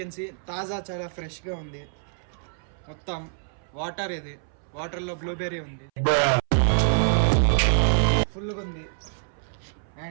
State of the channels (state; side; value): silent; left; 61 dB below the other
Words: సీ తాజా చాలా ఫ్రెష్గా ఉంది. మొత్తం వాటర్ ఇది, వాటర్లో బ్లూబెర్రీ ఉంది, ఫుల్గా ఉంది.